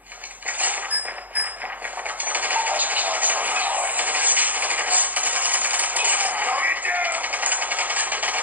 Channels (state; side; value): late; left; 0.081 ms